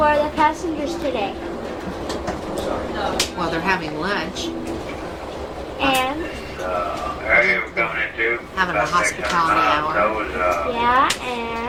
the passengers today? Well, they're having lunch, And area we're going into. having a hospitality hour, yeah,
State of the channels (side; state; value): both; identical; correlation 1.00